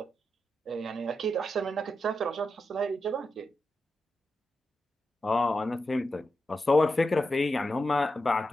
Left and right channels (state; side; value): normal; both; correlation 0.88